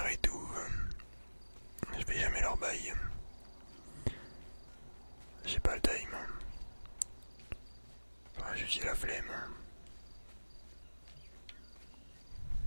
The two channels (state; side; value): inverted; both; correlation -1.00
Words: et tout. Je fais jamais leur bail. J'ai pas le time. Enfin, j'ai la flemme.